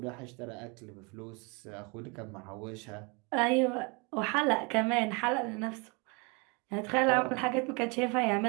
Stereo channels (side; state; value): left; quieter; 30.4 dB